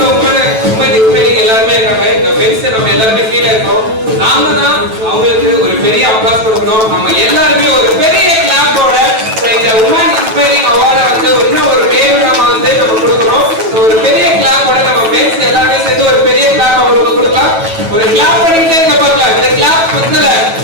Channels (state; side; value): late; left; 9.1 ms